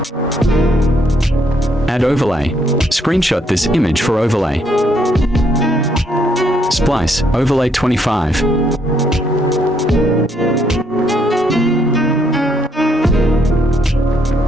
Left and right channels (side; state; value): both; normal; correlation 0.71